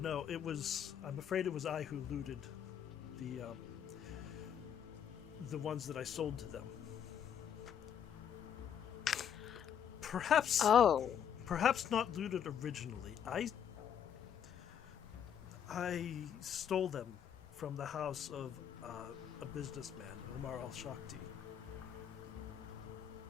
I'm afraid it was I who looted the ones that I sold to them. Perhaps not looted originally. I stole them from the house of a businessman, Umar al-Shakti.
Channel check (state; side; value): quieter; right; 8.8 dB